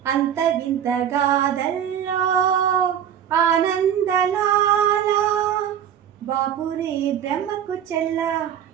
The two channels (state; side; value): quieter; left; 9.3 dB